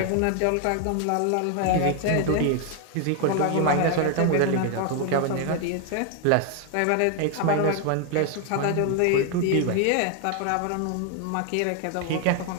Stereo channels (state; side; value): different; both; correlation 0.00